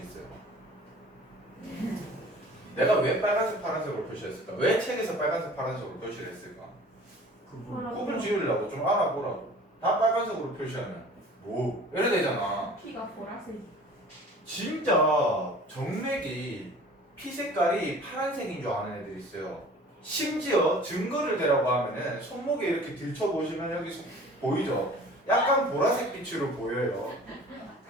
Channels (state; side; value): normal; both; correlation 0.46